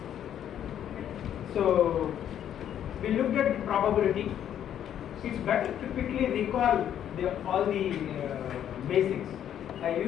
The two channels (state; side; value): quieter; right; 10.1 dB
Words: So we looked at the probability. It's better to quickly recall all the basics. I